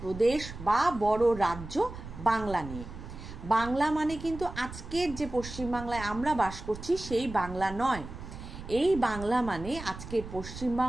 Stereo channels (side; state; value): right; noise; rumble, 12 dB below the sound